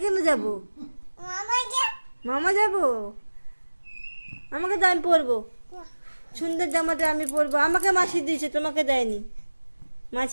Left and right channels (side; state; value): both; inverted; correlation -1.00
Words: কেন যাবো? মামা যাবো? আমাকে দাও, আমি পরবো। সুন্দর জামাটা আমি পরবো। আমাকে মাছি দিয়েছে, তোমাকে দেয়নি।